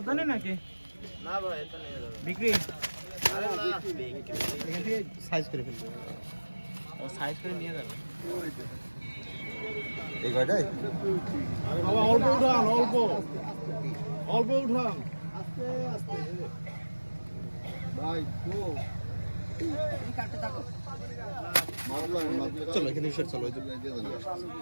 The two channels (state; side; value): inverted; both; correlation -1.00